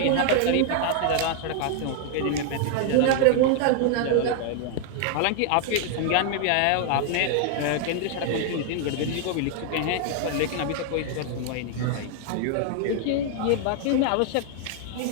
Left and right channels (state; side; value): different; both; correlation 0.00